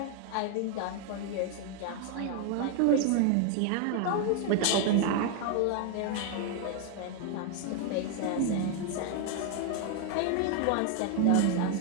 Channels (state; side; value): different; both; correlation 0.00